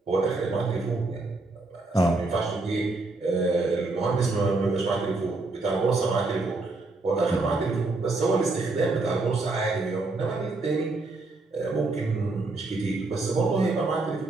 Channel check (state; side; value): quieter; left; 3.3 dB